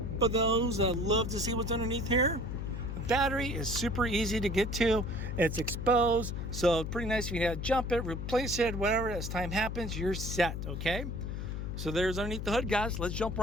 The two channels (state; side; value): noise; left; hum, 4 dB below the sound